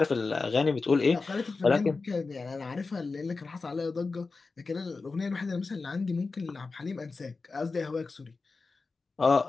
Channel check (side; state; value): right; quieter; 4.1 dB